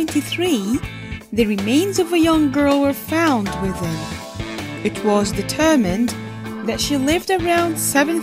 the remains of a young girl were found within. It was determined that she lived around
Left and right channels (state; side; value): identical; both; correlation 1.00